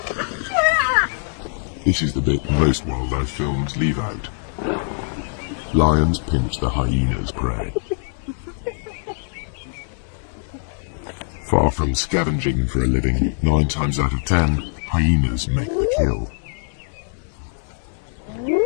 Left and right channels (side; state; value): right; silent; digital silence